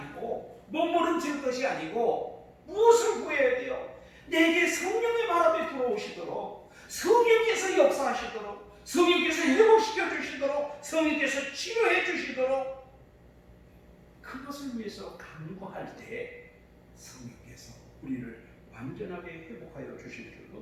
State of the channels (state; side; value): identical; both; correlation 1.00